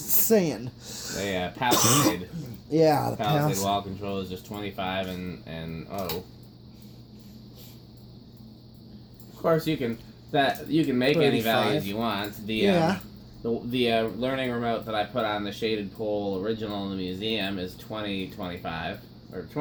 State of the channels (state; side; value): identical; both; correlation 1.00